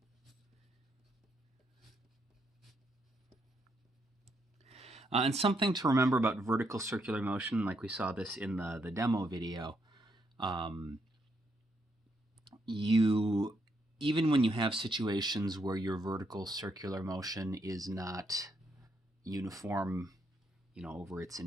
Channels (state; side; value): normal; both; correlation 0.77